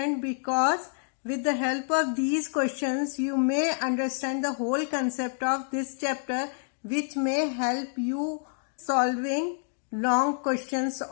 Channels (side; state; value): right; silent; digital silence